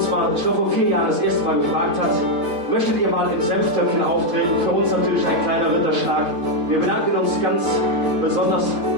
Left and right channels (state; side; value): late; left; 4.0 ms